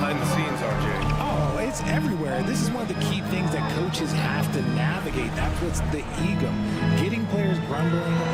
the scenes, RJ? Oh, it's everywhere. This is one of the key things that coaches have to navigate. That's what's the ego. Getting players grumbling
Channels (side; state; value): both; identical; correlation 1.00